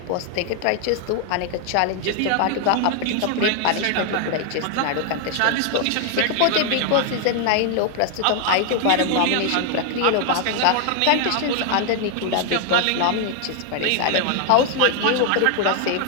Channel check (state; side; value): different; both; correlation 0.00